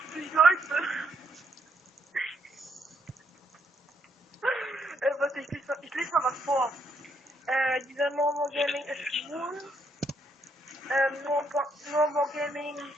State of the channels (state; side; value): normal; both; correlation 0.74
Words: Leute. Warte, ich lese mal was vor. Dieser No More Gaming ist schwul. No More Gaming